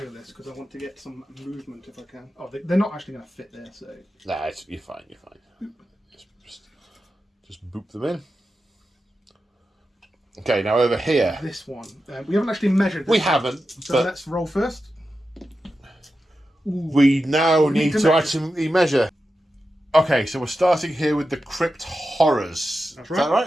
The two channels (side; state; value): both; normal; correlation 0.91